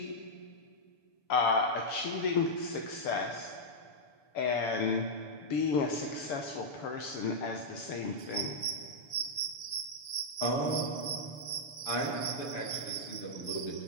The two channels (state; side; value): late; right; 7.0 ms